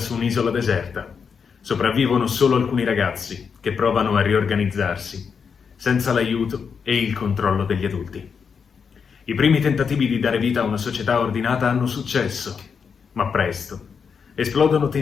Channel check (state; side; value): quieter; right; 6.2 dB